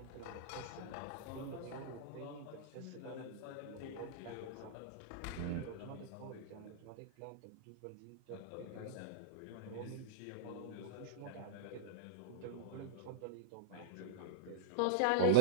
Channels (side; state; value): both; different; correlation -0.03